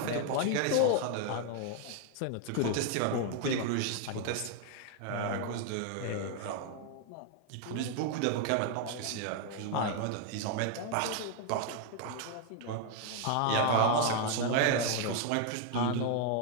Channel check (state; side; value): different; both; correlation 0.00